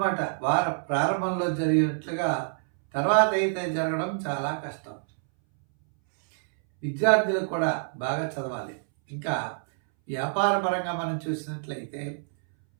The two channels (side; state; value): left; silent; 60 dB below the other